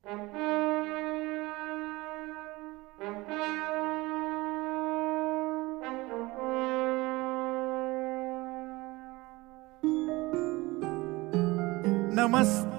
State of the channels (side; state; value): left; quieter; 21.5 dB